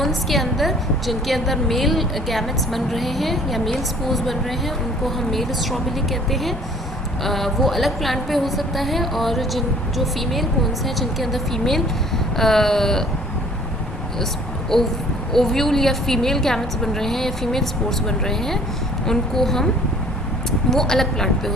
के अंदर जिनके अंदर मेल गैमेट्स बन रहे हैं या मेल स्पोर्स बन रहे हैं, उनको हम मेल स्ट्रॉबेली कहते हैं. वो अलग प्लांट पे हो सकता है, और जो फीमेल कोन्स हैं जिनके अंदर फीमेल ओव्यूल या फीमेल गैमेट्स बन रहे हैं या फीमेल स्पोर्स बन रहे हैं, उनको हम वो अलग प्लांट पे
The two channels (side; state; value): both; normal; correlation 0.54